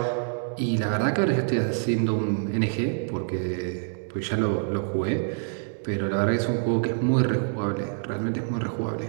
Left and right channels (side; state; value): left; silent; digital silence